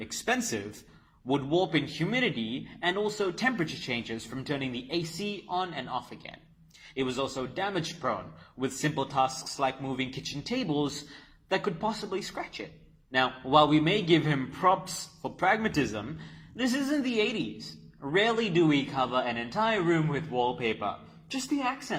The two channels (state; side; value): identical; both; correlation 1.00